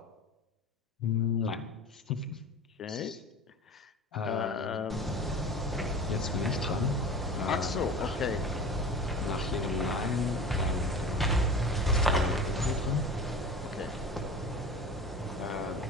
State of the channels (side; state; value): both; normal; correlation 0.35